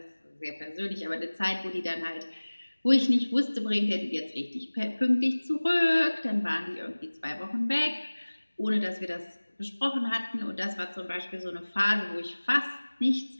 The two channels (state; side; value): inverted; both; correlation -1.00